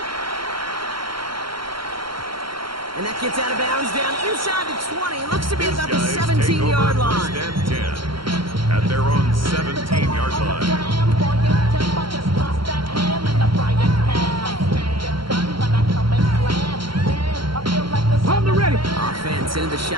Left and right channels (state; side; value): late; left; 0.73 ms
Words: And that gets out of bounds down inside the 20. It looks to be about the 17-yard line. 1st and 10 at their own 17-yard line. On the ready. Offense Texans into the